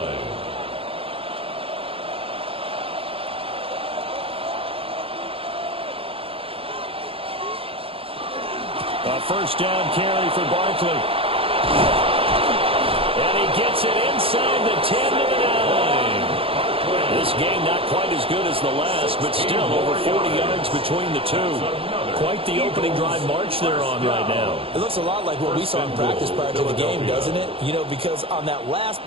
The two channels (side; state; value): left; late; 0.27 ms